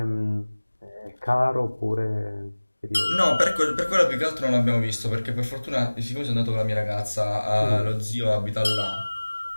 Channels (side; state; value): both; inverted; correlation -1.00